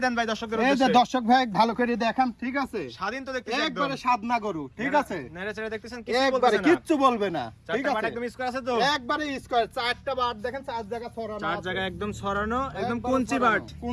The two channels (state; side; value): identical; both; correlation 1.00